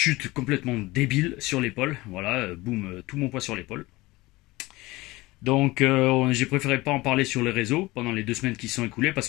complètement débile sur l'épaule. Voilà, boum, tout mon poids sur l'épaule. Donc j'ai préféré pas en parler sur les réseaux pendant les 2 semaines qui se sont écoulées parce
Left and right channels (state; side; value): quieter; right; 20.7 dB